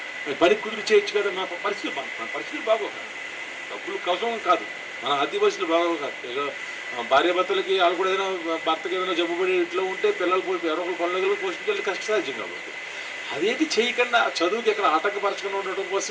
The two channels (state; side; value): identical; both; correlation 1.00